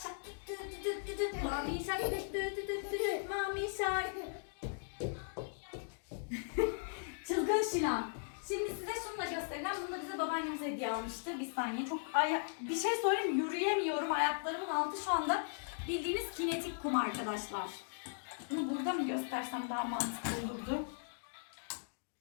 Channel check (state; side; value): silent; right; digital silence